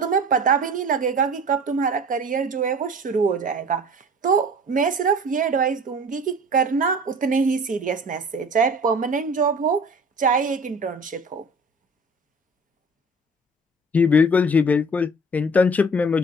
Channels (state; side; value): normal; both; correlation 0.43